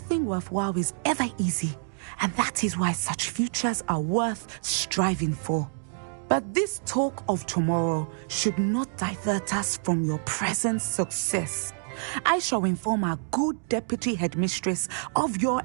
worthwhile is ever easy, and that is why such futures are worth striving for. But this talk of tomorrow should not divert us from your present success. I shall inform our good deputy headmistress of your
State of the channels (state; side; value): silent; left; digital silence